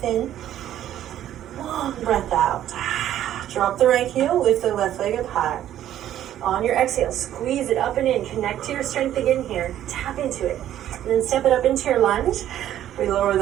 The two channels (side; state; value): left; quieter; 11.8 dB